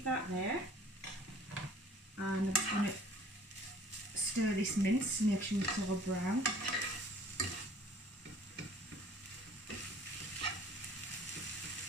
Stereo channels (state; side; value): normal; both; correlation 0.52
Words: that there, and I'm just going to stir this mince to make sure it's all brown.